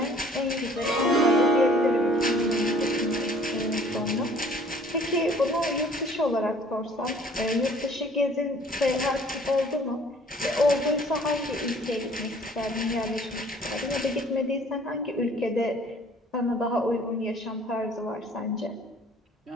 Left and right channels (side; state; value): both; normal; correlation 0.55